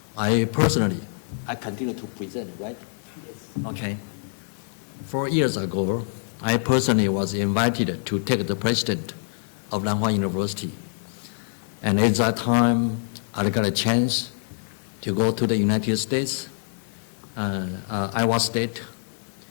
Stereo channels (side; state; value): right; silent; digital silence